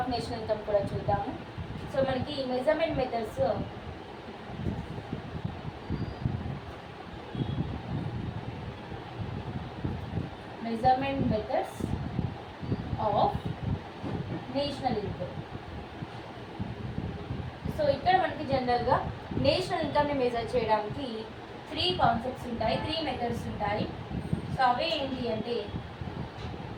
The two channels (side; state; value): both; identical; correlation 1.00